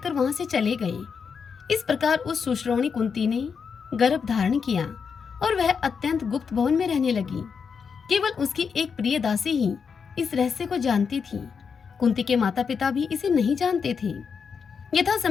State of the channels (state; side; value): quieter; right; 6.1 dB